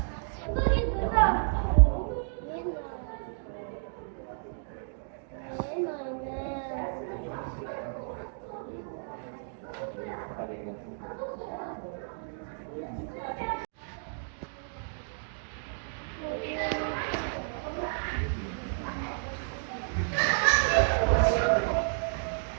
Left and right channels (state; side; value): silent; left; digital silence